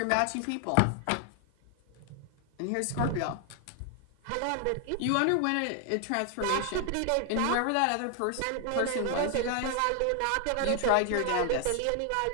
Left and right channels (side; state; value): both; different; correlation 0.00